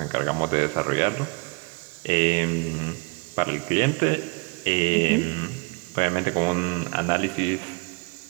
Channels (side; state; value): left; quieter; 32.2 dB